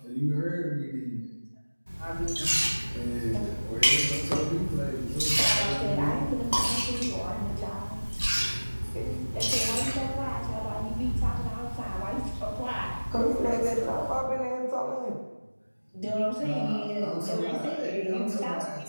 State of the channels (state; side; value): inverted; both; correlation -1.00